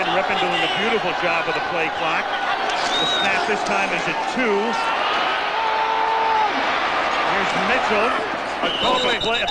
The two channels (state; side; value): identical; both; correlation 1.00